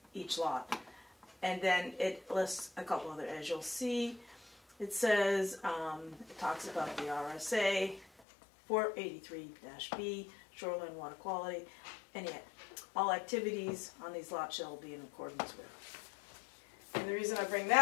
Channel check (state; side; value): drops out; right; at 8.1 s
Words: each lot, and then it lists a couple other. As you'll see, it says it talks about the RSA 483-B shoreline water quality, and yet all activities on these lots shall be in accordance with. And the reason I bring